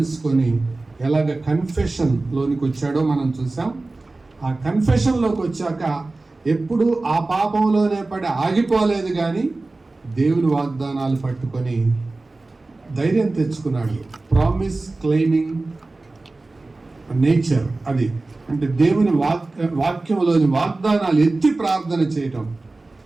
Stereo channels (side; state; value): left; quieter; 3.2 dB